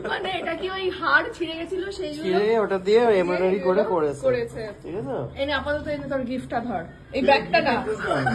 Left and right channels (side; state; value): both; identical; correlation 1.00